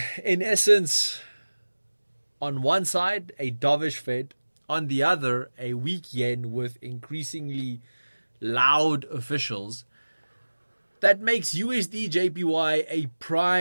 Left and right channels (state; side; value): inverted; both; correlation -1.00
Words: in essence, on one side, a dovish Fed, on the other, a weak yen with increasingly loud officials, that makes USD JPY a